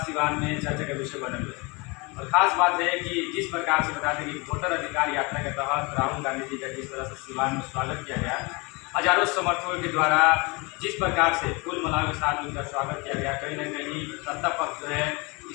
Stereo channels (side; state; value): right; quieter; 27.7 dB